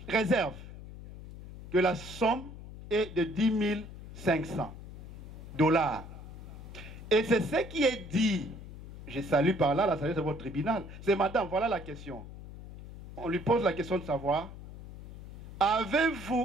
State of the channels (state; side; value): noise; left; hum, 14 dB below the sound